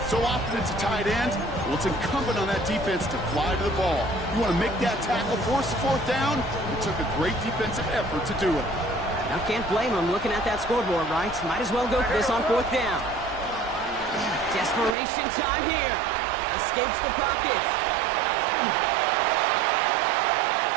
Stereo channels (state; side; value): drops out; left; at 15.0 s